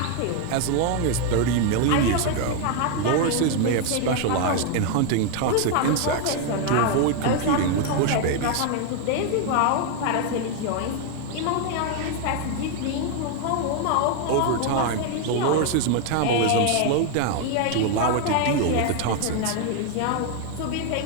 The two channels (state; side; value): different; both; correlation 0.01